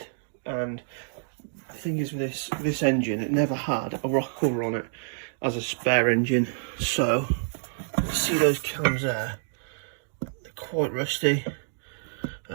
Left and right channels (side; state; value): left; silent; digital silence